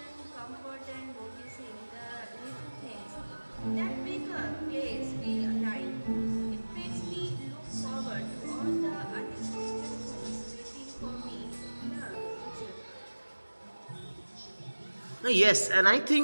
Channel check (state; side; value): inverted; both; correlation -1.00